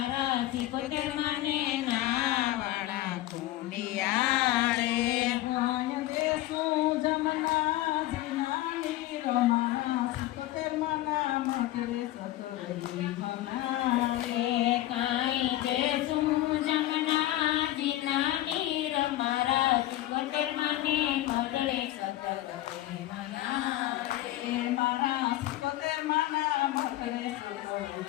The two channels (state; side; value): quieter; right; 15.4 dB